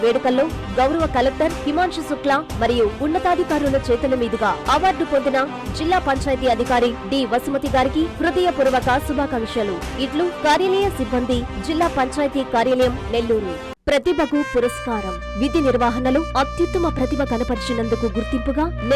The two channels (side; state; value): both; identical; correlation 1.00